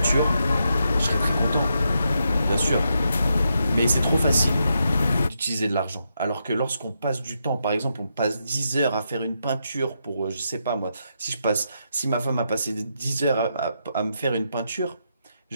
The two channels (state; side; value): inverted; both; correlation -0.82